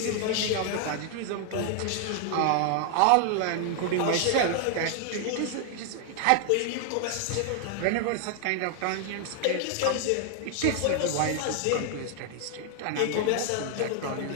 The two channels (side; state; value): both; different; correlation 0.00